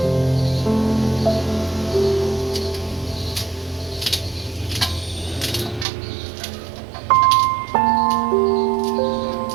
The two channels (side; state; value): left; drops out; at 5.9 s